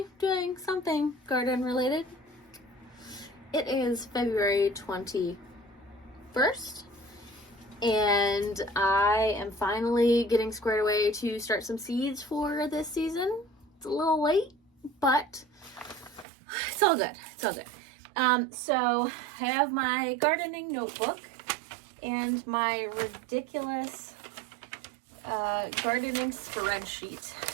doing something garden related. It is February 21st, and I am finally getting squared away to start some seeds for this season. It's a little late, but it's all good. It's all good. So I have my gardening notebook and my ridiculous gardening spreadsheet,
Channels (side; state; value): left; drops out; at 16.2 s